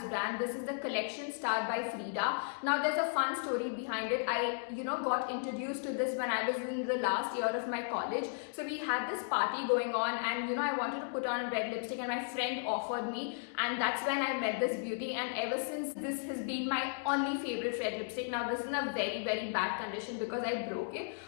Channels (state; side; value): silent; right; 54 dB below the other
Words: brand. This is the collection starred by Frida. Now there's a fun story behind it. I got introduced to this when I was in the last year of my college. So we had this party going on and I wanted to put on a red lipstick and my friend offered me, and that's when I met this beauty, and ever since this has been my only favorite red lipstick. Now this is in a very bad condition because I broke it,